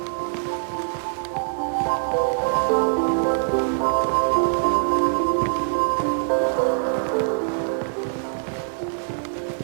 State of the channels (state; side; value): silent; left; digital silence